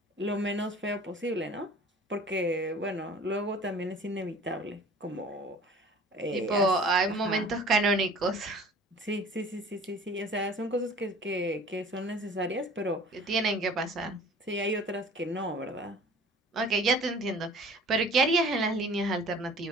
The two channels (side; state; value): both; normal; correlation 0.46